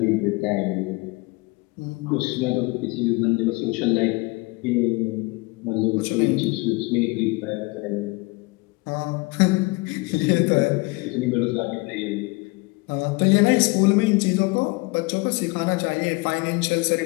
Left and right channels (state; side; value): quieter; right; 25.7 dB